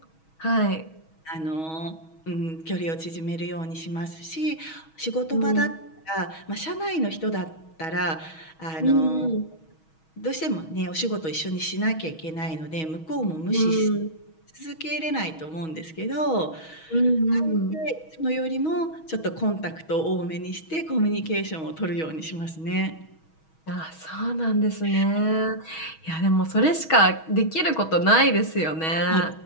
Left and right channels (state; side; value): late; right; 6.3 ms